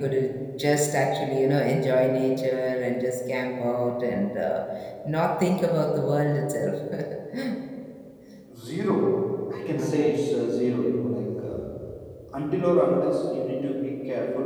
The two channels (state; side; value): identical; both; correlation 1.00